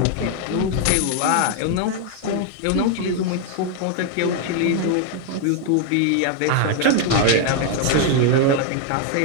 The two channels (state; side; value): different; both; correlation 0.01